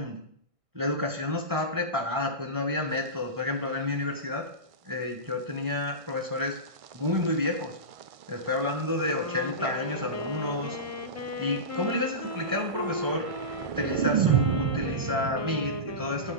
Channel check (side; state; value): left; late; 1.6 ms